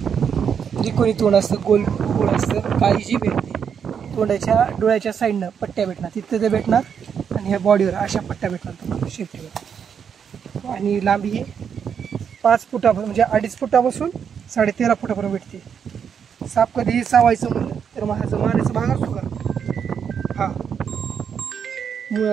त्रिकोणी तोंड असतं, गोल गोल असतं, काळी जीभ येते. तोंडाच्या डोळ्याच्या साईडनं पट्ट्या भेटणार, तिथं ते भेटणार आणि ह्या बॉडीवर अशा पट्ट्या भेटणार तुम्हाला शेपटीवर. आणि लांबी ही 5 फुटा म्हणजे 2.5 फुटापासून 13.5 फुटापर्यंत भेटते. साप कधीही चावायचं म्हणलं तर माझं मानेचा भाग असतो का हा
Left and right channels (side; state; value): left; quieter; 7.4 dB